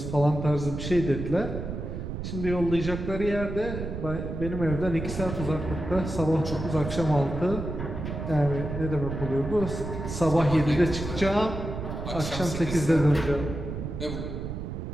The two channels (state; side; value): noise; right; rumble, 6 dB below the sound